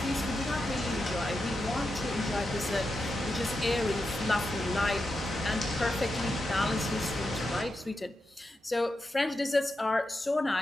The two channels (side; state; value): both; normal; correlation 0.88